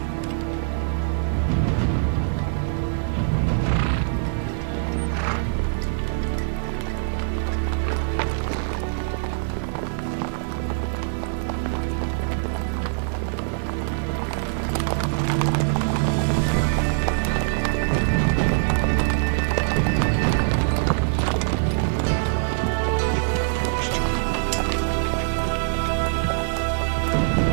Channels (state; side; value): silent; left; digital silence